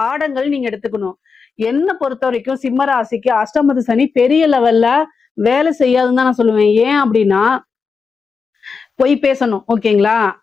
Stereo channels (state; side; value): quieter; right; 5.2 dB